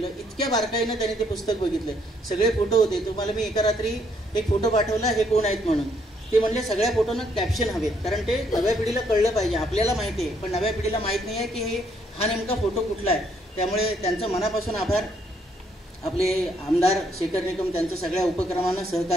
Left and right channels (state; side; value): normal; both; correlation 0.70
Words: इतक्या बारकाईनं त्यांनी ते पुस्तक बघितलं. सगळे फोटो होते. तुम्हाला मी एका रात्री एक फोटो पाठवला, हे कोण आहेत म्हणून. ते म्हणले सगळ्या फोटोंना कॅप्शन हवेत, कारण ते नव्या पिढीला कळलं पाहिजे. आपल्याला माहिती आहे पण नव्या पिढीला माहीत नाही आहे की हा नेमका फोटो कुठला आहे. त्यामुळे त्यांचं मनापासून आभार. आपले आमदार शेखर निकम त्यांचं सगळ्या उपक्रमांना